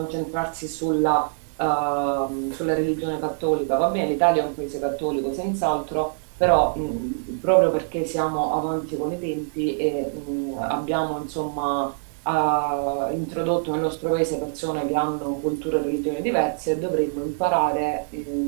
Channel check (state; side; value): silent; left; digital silence